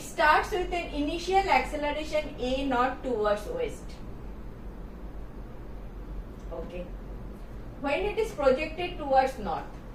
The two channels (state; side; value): identical; both; correlation 1.00